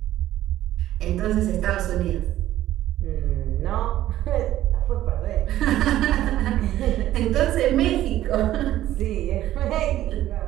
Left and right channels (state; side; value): quieter; left; 13.6 dB